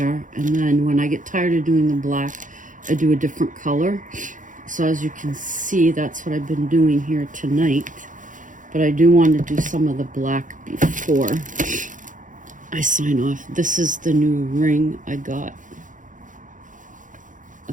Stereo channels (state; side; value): late; left; 0.38 ms